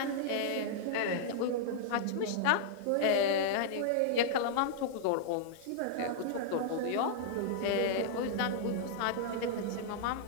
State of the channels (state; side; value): different; both; correlation -0.02